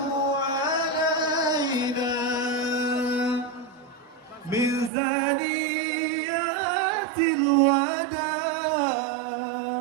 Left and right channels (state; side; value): drops out; left; at 4.9 s